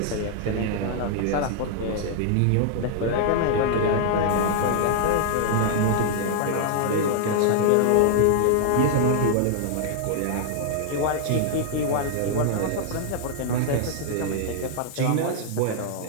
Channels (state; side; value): different; both; correlation 0.00